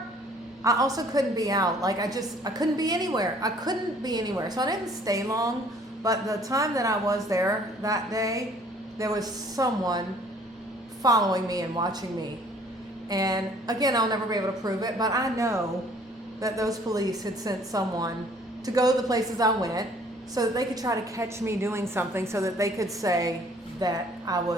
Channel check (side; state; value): both; normal; correlation 0.57